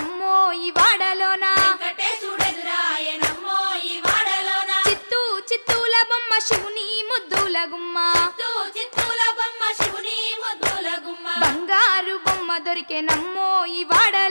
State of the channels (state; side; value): inverted; both; correlation -1.00